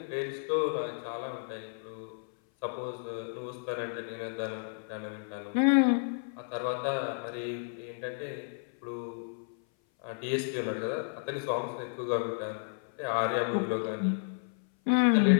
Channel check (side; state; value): right; silent; 56 dB below the other